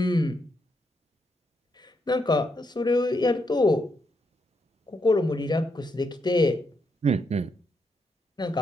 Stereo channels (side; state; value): both; normal; correlation 0.80